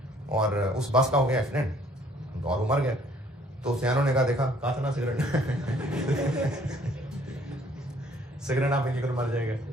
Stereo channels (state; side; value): normal; both; correlation 0.60